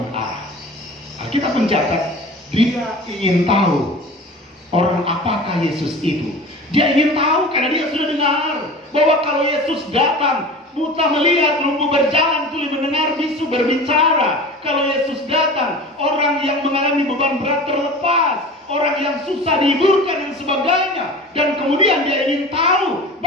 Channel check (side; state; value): both; normal; correlation 0.36